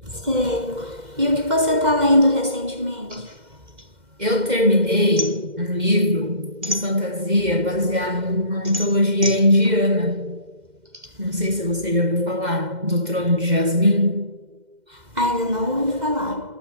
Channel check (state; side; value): late; left; 2.1 ms